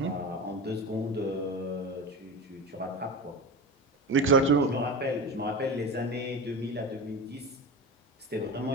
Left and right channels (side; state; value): both; normal; correlation 0.26